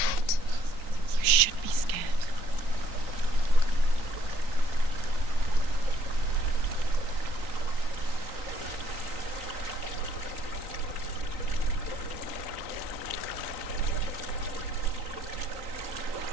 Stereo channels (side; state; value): left; late; 3.9 ms